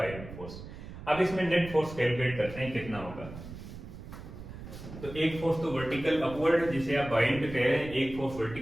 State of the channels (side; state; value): right; noise; rumble, 12 dB below the sound